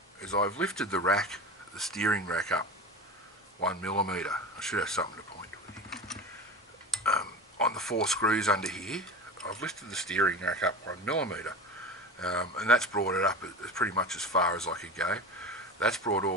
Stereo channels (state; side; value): normal; both; correlation 0.31